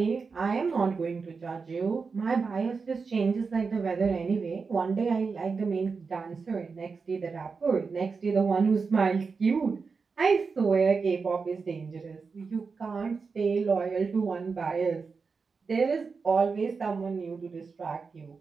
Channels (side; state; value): left; quieter; 4.9 dB